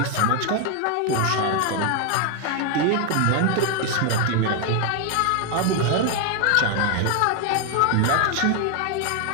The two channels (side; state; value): both; different; correlation 0.01